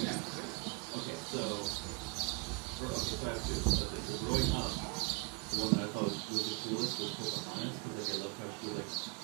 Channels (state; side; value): quieter; left; 31.2 dB